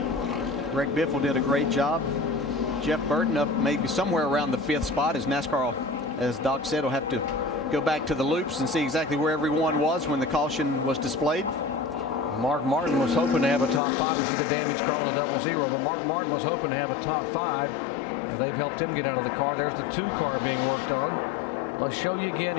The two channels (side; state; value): right; drops out; at 13.8 s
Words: Greg Biffle did a great job. Jeff Burton up maybe somewhere around the 5th spot, as NASCAR, as Doc said, will have to go back to the loops and see exactly where everyone was when the caution was displayed. Mark Martin was hoping to have a top 5. You see the damage car on the 00, but Mark Martin was hoping to have a top 5. And they've helped him get out of the car. There's the 2 car being worked on. Let's show you again